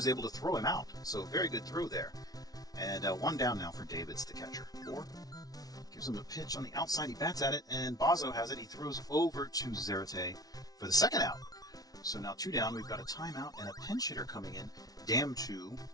able to throw him out. So very good throw there. And 1 down now for Davids, the catcher. Bohr gives him a pitch on the outside. He bats at it, and Bozzo has it. He throws over to Zarate for the 2nd out. So now 2 down. We've got a timeout and a pinch hitter coming in. Damn 2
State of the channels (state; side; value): late; right; 0.18 ms